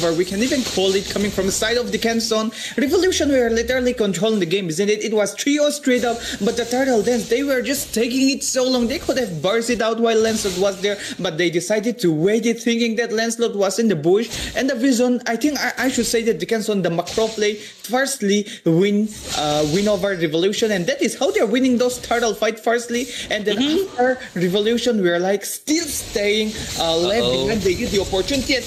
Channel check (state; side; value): identical; both; correlation 1.00